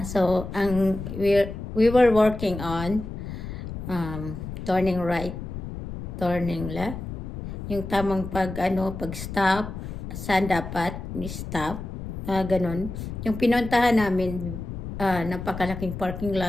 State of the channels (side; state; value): left; noise; rumble, 8 dB below the sound